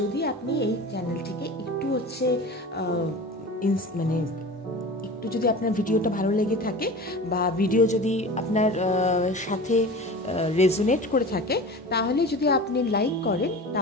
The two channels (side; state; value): both; normal; correlation 0.35